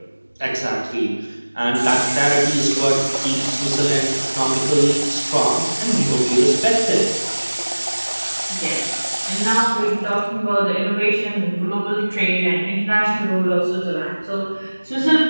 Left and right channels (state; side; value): inverted; both; correlation -1.00